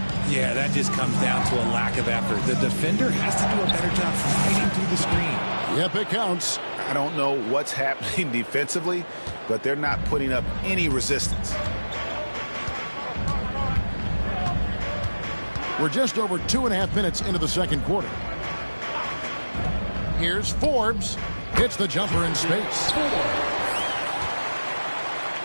Yeah, that just comes down to a lack of effort. The defender has to do a better job fighting through the screen. Yep, it counts. I don't know what's happening defensively, but they're not putting up any resistance. We're just over 2.5 minutes into the second quarter. Here's Forbes. Hits the jumper in space.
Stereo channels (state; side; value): inverted; both; correlation -1.00